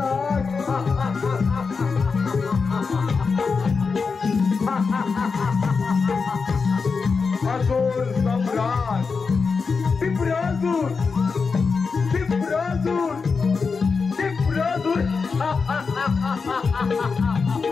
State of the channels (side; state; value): right; quieter; 4.9 dB